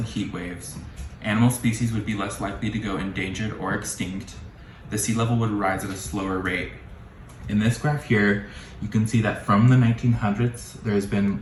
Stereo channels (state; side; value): identical; both; correlation 1.00